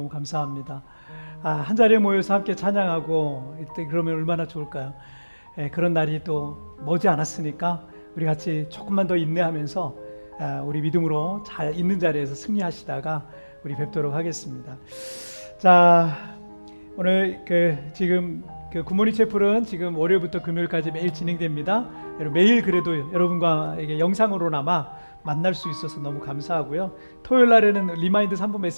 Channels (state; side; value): inverted; both; correlation -1.00